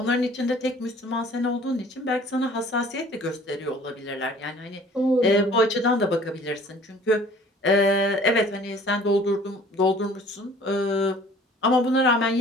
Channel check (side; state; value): both; normal; correlation 0.51